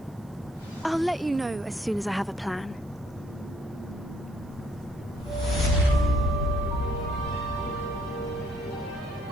I'll let you know as soon as I have a plan.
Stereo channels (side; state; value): right; noise; hiss, 30 dB below the sound